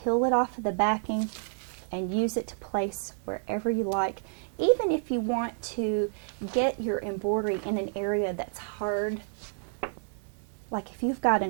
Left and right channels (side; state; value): left; silent; 58 dB below the other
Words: it off of the backing and use it to place wherever you like. Even if you want to get your embroidery in an area that's hard, like if you've got